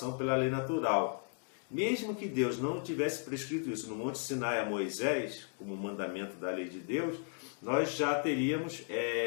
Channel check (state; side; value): silent; right; 54 dB below the other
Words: pela lei natural. Mesmo que Deus não tivesse prescrito isso no Monte Sinai a Moisés, como mandamento da lei de Deus, nós já teríamos